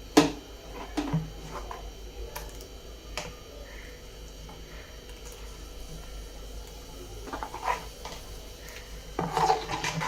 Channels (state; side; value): identical; both; correlation 1.00